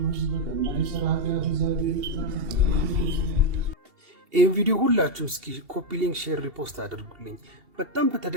በከማይሰራ ኃጢአት እግዚአብሔር ይህን ቪዲዮ ሁላችሁም እስኪ ኮፒ ሊንክ፣ ሼር፣ ሪፖስት አድርጉልኝ። በጣም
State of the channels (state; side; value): late; left; 2.7 ms